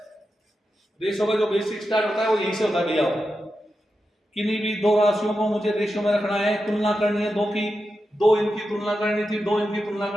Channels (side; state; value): both; normal; correlation 0.89